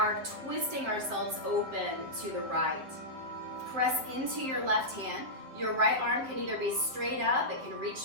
twisting ourselves open to the right. Press into your left hand. Your right arm can either be straight up, it can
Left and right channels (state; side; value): late; left; 7.9 ms